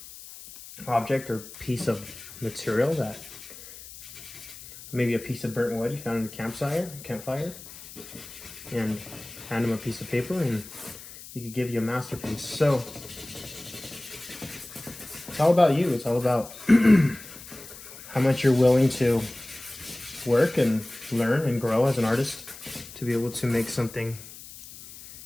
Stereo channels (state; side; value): noise; left; hiss, 16 dB below the sound